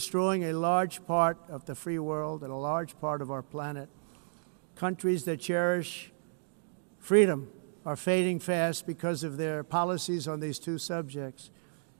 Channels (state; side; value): silent; left; digital silence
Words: a large part of the free world and a large part of our planet. Countries that cherish freedom are fading fast because of their policies on these two subjects.